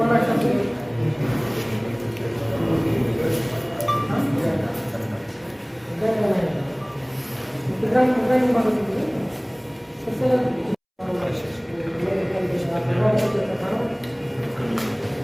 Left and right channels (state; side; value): identical; both; correlation 1.00